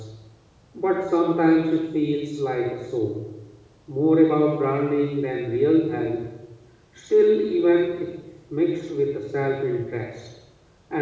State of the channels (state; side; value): identical; both; correlation 1.00